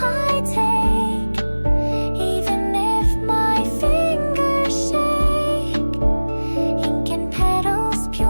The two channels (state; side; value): inverted; both; correlation -1.00